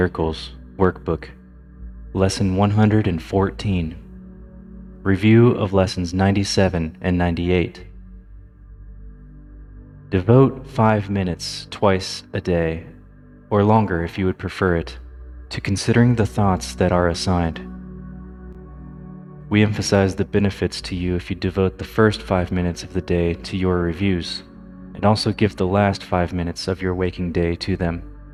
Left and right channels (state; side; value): identical; both; correlation 1.00